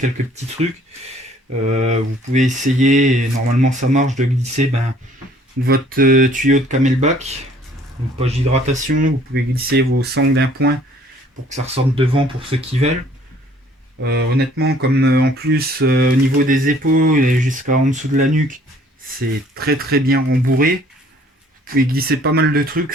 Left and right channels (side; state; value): both; normal; correlation 0.57